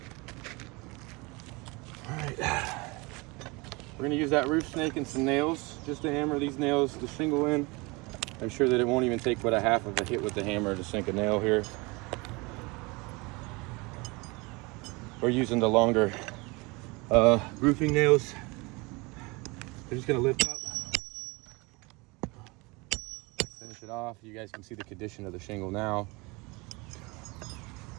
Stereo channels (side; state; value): left; quieter; 26.0 dB